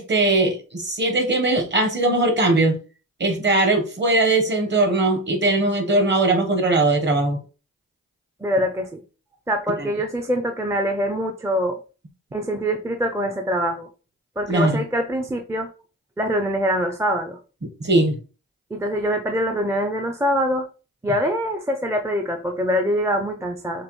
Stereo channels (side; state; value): both; normal; correlation 0.27